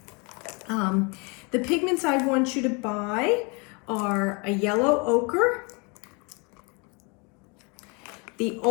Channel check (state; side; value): quieter; right; 31.3 dB